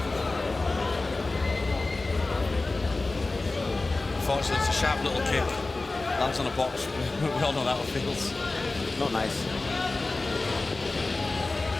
Unfortunately, it's a sharp little kick. Lands on a box. We all know how it feels. Not nice.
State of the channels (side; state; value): right; quieter; 3.3 dB